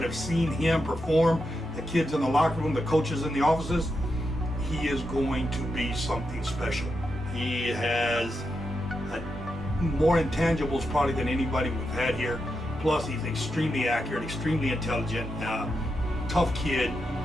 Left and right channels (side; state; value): both; normal; correlation 0.85